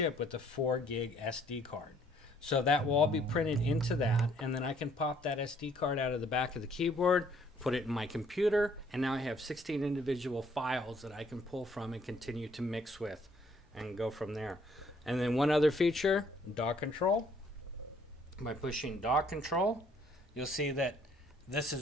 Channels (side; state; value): both; normal; correlation 0.63